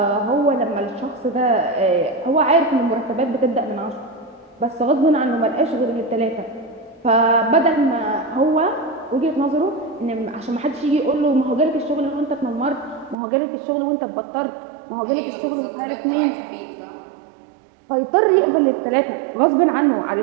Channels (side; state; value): left; drops out; at 13.2 s